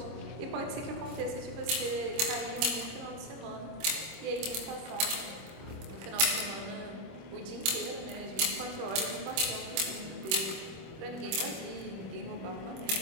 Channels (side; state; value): left; late; 25 ms